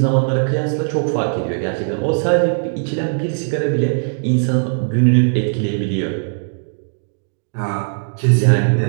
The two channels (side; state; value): left; silent; digital silence